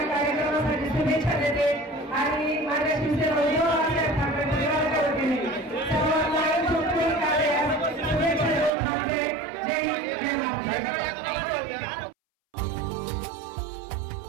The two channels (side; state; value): left; drops out; at 8.7 s